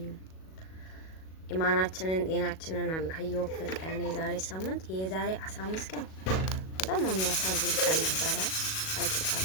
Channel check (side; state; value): right; late; 37 ms